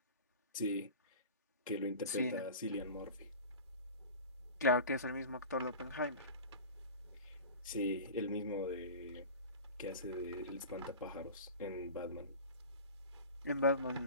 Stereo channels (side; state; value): both; inverted; correlation -0.35